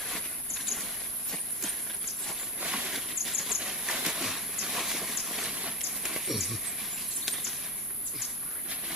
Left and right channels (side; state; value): both; normal; correlation 0.24